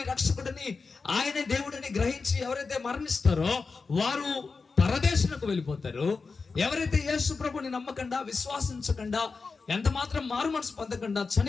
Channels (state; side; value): quieter; right; 4.5 dB